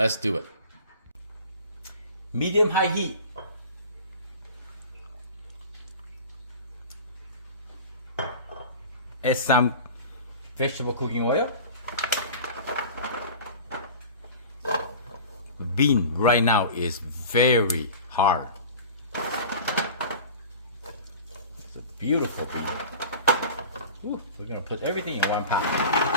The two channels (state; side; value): inverted; both; correlation -0.38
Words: do it. Medium high heat. Add some vegetable cooking oil. The bean right now is very hard. It's a beautiful bean. Ooh, we're gonna put everything in one